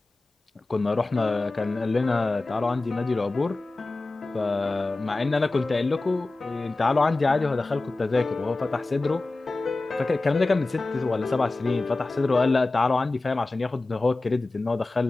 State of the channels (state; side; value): quieter; right; 3.2 dB